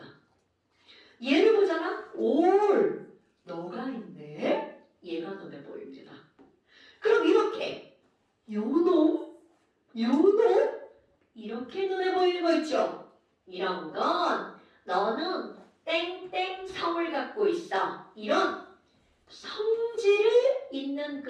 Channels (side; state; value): both; identical; correlation 1.00